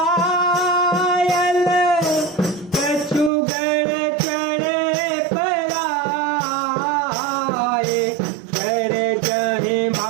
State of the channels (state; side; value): drops out; left; at 3.3 s